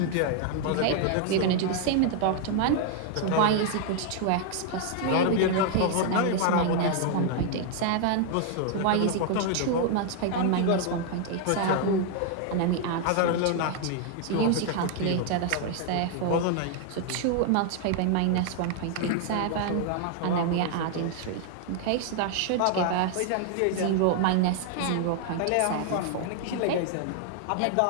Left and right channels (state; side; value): different; both; correlation 0.00